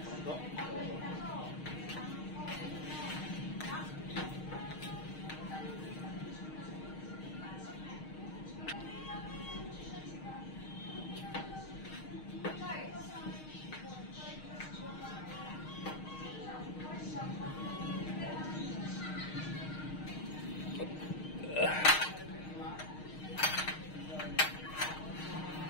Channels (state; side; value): late; right; 6.4 ms